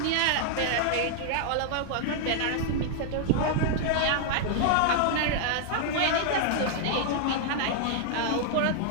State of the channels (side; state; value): both; different; correlation -0.01